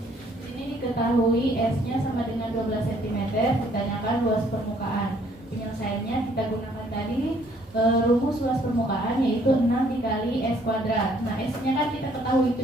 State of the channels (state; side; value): normal; both; correlation 0.63